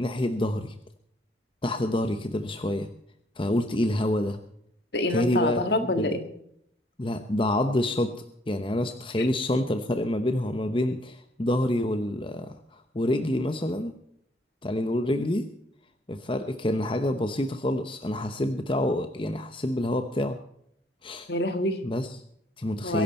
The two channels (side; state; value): both; normal; correlation 0.65